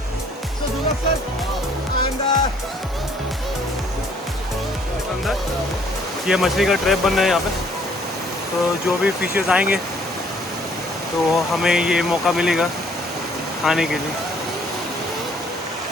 so do not sir. And ये मछली का ट्रैप बन रहा है यहाँ पे, तो जो भी फिशेस आएंगे तो हमें ये मौका मिलेगा खाने के लिए।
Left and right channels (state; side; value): normal; both; correlation 0.62